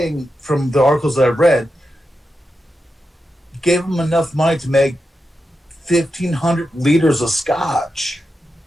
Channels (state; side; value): normal; both; correlation 0.88